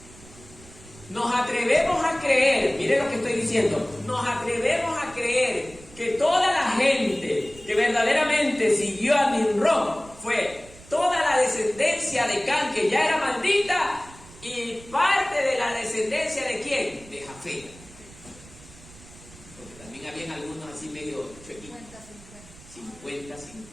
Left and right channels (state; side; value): noise; right; rumble, 21 dB below the sound